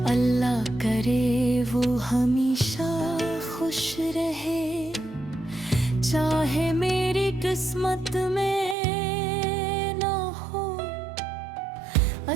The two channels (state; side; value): drops out; left; at 8.8 s